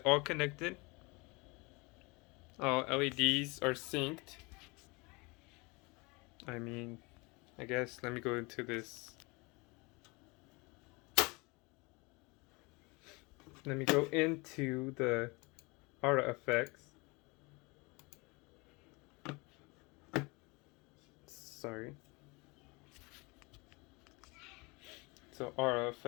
all connected. All LEDs are synced. I mean, I guess let me go into this. Let me go into the aura effects. Sorry. So aura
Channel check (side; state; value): right; quieter; 27.0 dB